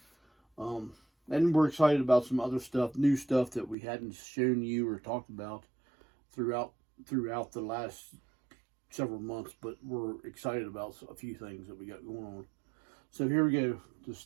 And we're excited about some other stuff, new stuff that we hadn't shown you or talked about throughout the last several months, but we're excited about a few things that we got going on. So here we go. To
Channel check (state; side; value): drops out; left; at 3.8 s